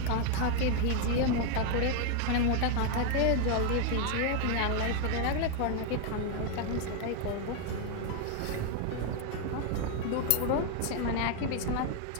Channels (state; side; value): different; both; correlation 0.01